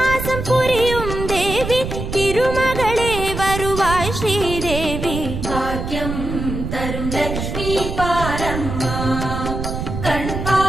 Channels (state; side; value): noise; right; rumble, 5 dB below the sound